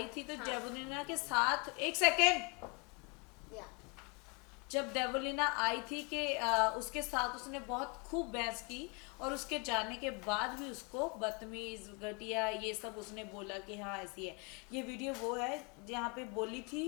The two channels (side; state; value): right; quieter; 31.8 dB